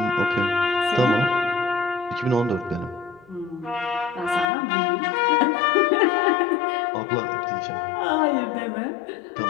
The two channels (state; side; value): drops out; right; at 4.5 s